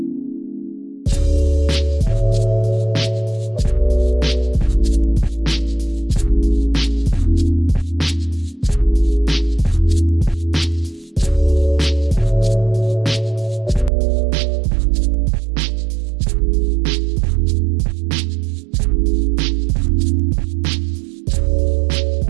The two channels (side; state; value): left; drops out; at 13.9 s